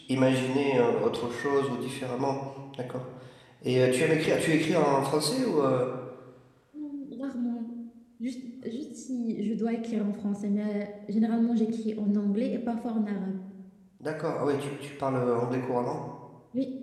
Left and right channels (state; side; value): identical; both; correlation 1.00